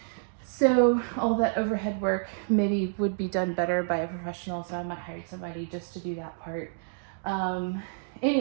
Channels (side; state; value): left; silent; digital silence